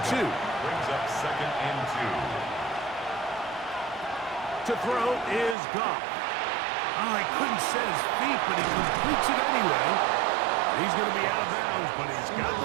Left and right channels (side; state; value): left; drops out; at 5.6 s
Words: 2. Brings up 2nd and 2. To throw is Goff. Oh, he couldn't set his feet, but he completes it anyway. He's going to be out of bounds, but he's got